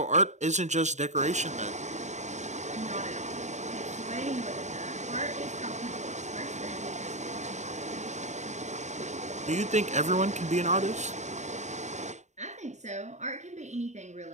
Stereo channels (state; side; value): late; left; 0.34 ms